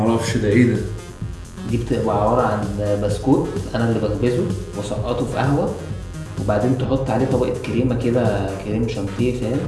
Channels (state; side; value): identical; both; correlation 1.00